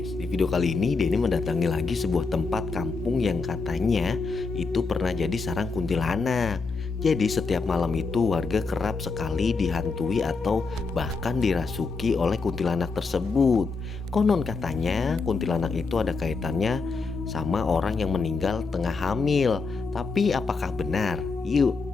di video kali ini Denny mendatangi lagi sebuah tempat kampung yang katanya itu pernah jadi sarang kuntilanak. Jadi setiap malam itu warga kerap sekali dihantui atau bahkan dirasuki oleh kuntilanak tersebut. Konon katanya kuntilanak itu ada kaitannya sama orang yang meninggal tengah hamil. Tapi apakah benar?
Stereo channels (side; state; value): right; quieter; 4.3 dB